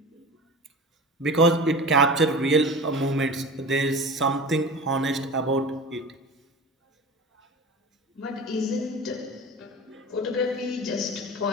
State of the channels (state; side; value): normal; both; correlation 0.33